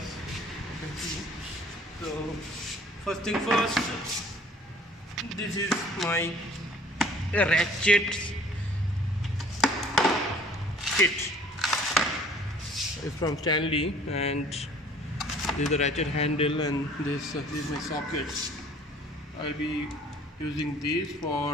You can see. So first thing first. This is my ratchet kit. It's from Stanley, and this is the ratchet handle, and this is my socket. I'll be using these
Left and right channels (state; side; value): normal; both; correlation 0.53